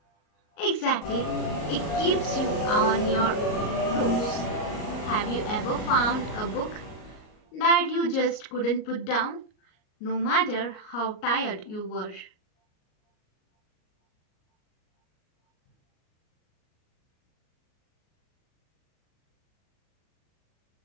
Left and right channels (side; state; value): right; late; 38 ms